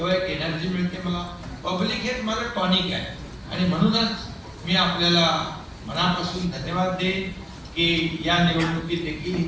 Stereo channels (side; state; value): both; identical; correlation 1.00